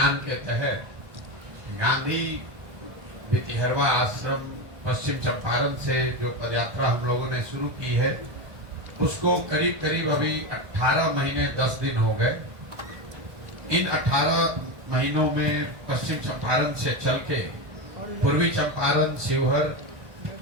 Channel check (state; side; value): late; left; 1.5 ms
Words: के तहत गांधी भितिहरवा आश्रम पश्चिम चंपारण से जो पदयात्रा हम लोगों ने शुरू की है, उसको करीब करीब अभी 18 महीने 10 दिन हो गए। इन 18 महीनों में पश्चिम चंपारण से चल के पूर्वी चंपारण, शिवहर,